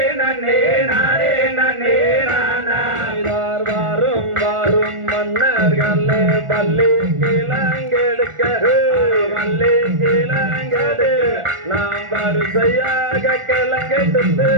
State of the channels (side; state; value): left; late; 1.4 ms